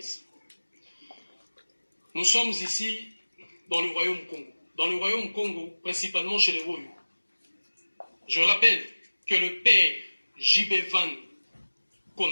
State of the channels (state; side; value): inverted; both; correlation -1.00